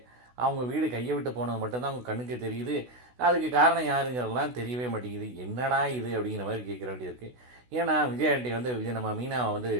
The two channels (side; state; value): left; late; 16 ms